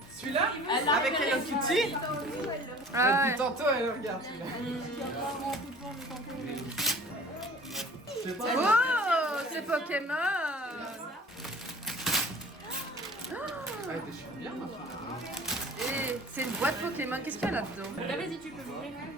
Celui-là? Avec Hello Kitty? Ah, Depuis tantôt, elle regarde celui-là. Oh, c'est Pokémon. Ouais, t'es sûr bien, ma fille. Et c'est une boîte Pokémon, qu'est-ce qu'il y a là-dedans? Vas-y, tu peux m'ouvrir.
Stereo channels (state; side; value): normal; both; correlation 0.46